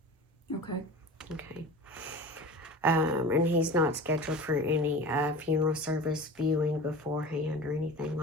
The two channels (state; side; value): normal; both; correlation 0.35